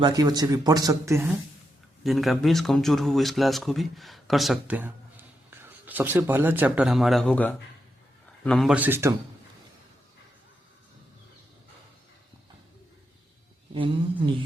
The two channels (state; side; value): normal; both; correlation 0.84